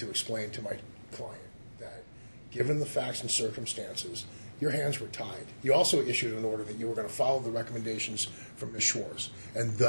explain to my client that given the facts and circumstances, your hands were tied. You also issued an order that you were going to follow the recommendations from Ms. Schwartz, and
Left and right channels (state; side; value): inverted; both; correlation -1.00